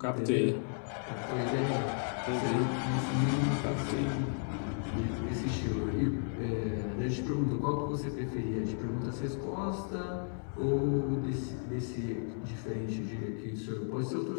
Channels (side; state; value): right; silent; 55 dB below the other